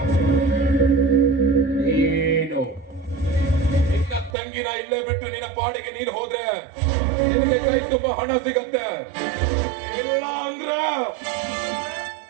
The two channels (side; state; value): left; drops out; at 4.3 s